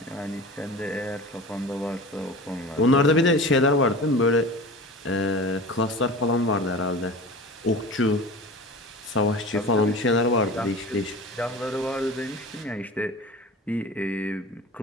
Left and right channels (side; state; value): both; normal; correlation 0.34